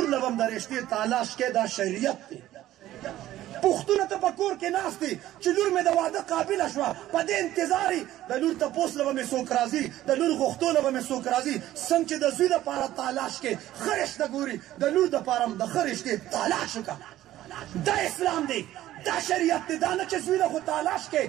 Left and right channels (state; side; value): quieter; left; 14.1 dB